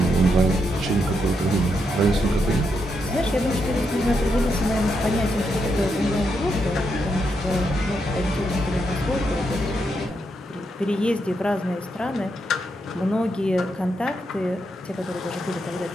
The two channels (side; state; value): both; normal; correlation 0.81